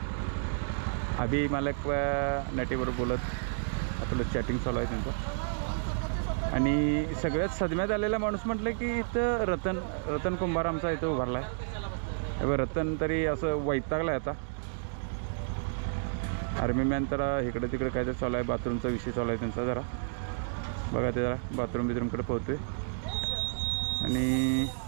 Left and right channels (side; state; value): left; silent; digital silence